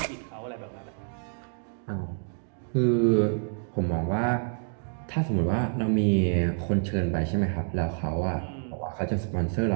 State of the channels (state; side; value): silent; left; 59 dB below the other